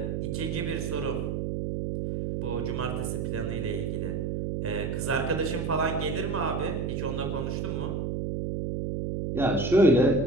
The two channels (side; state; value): right; noise; hum, 1 dB below the sound